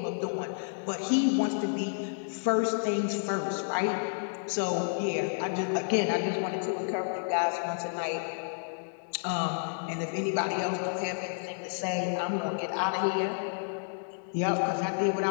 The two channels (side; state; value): right; silent; digital silence